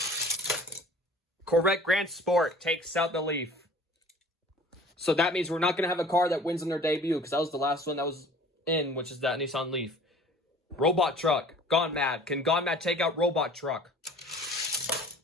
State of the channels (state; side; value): normal; both; correlation 0.47